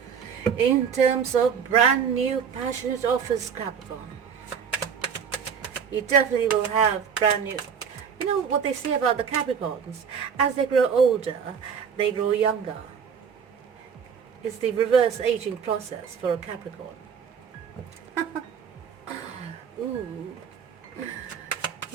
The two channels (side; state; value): left; quieter; 7.1 dB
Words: in terms of brand new passionate offers, Capricorn. You definitely will have brand new. You know what they say about the Capricorns? As they grow older, they grow younger. It's the reverse aging process for a Capricorn. Ooh.